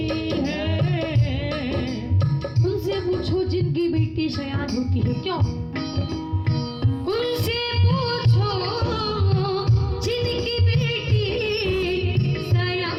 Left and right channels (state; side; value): identical; both; correlation 1.00